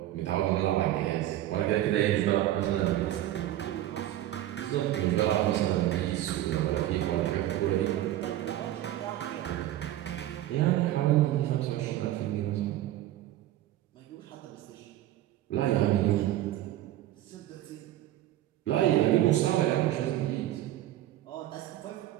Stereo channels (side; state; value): left; quieter; 13.8 dB